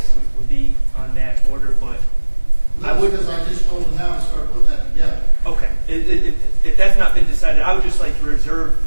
would be on that order, but I would. Because I just told him now to start putting that together. Okay, if that's not been decided, I would just like to reserve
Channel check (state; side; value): inverted; both; correlation -1.00